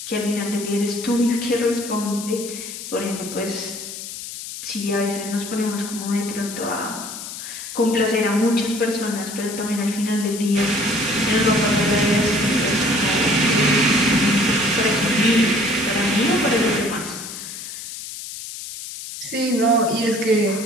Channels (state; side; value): noise; left; hiss, 10 dB below the sound